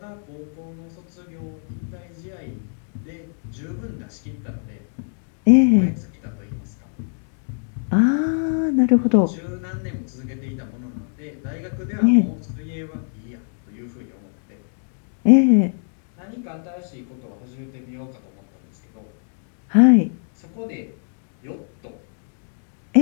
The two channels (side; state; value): right; silent; digital silence